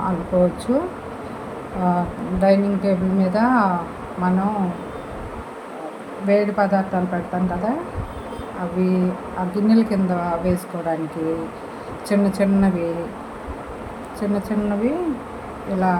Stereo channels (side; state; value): both; identical; correlation 1.00